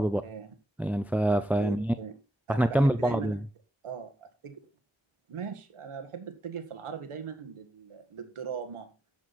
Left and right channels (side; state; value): both; normal; correlation 0.85